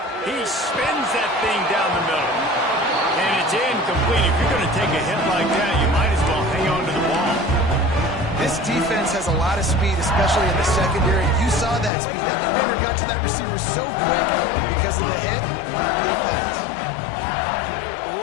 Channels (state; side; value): drops out; right; at 11.9 s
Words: He spins that thing down the middle. And it's incomplete. If you're going to take a hit like that, you might as well hang on to the ball. This defense has a lot of speed, especially in the secondary. You saw that speed. That defender got to that receiver so quick because of the hit. Complete pass.